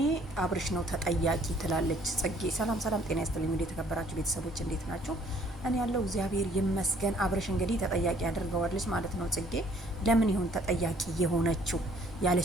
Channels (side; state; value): both; normal; correlation 0.60